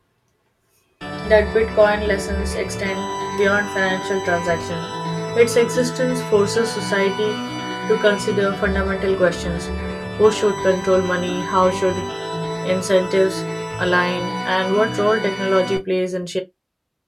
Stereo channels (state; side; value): identical; both; correlation 1.00